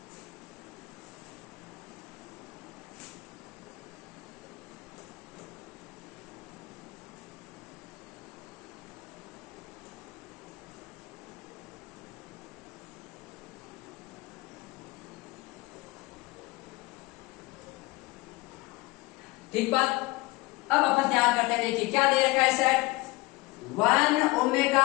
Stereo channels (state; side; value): quieter; right; 22.1 dB